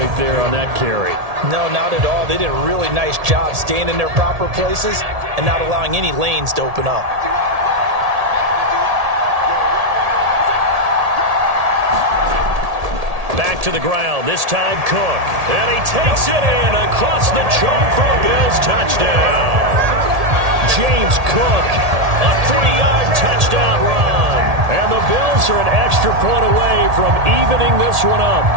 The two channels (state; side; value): late; left; 1.8 ms